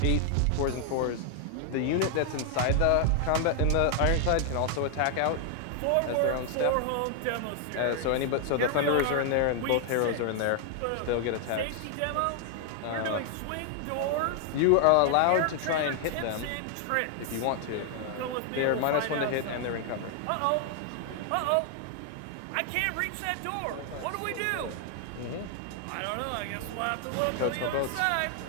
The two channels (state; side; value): different; both; correlation 0.00